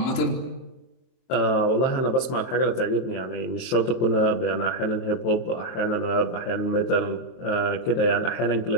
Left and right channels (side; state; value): right; late; 23 ms